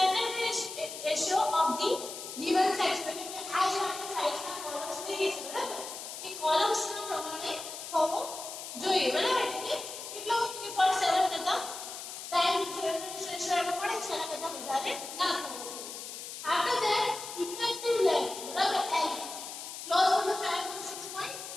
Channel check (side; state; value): left; noise; hiss, 9 dB below the sound